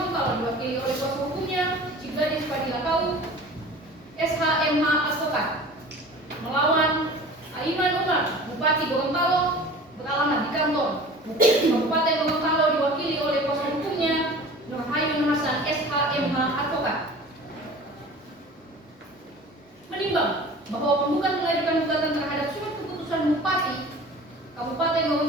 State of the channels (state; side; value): normal; both; correlation 0.41